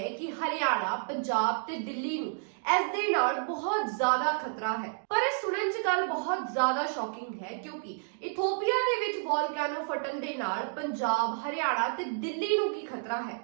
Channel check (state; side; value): silent; left; digital silence